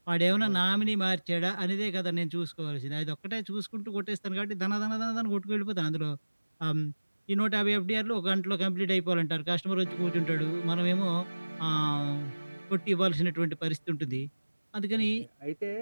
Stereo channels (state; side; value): inverted; both; correlation -1.00